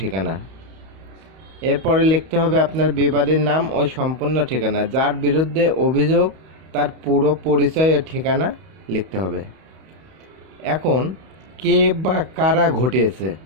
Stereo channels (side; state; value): left; late; 31 ms